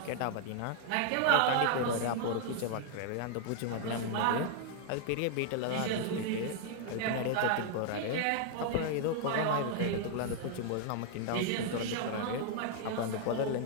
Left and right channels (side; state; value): both; different; correlation 0.00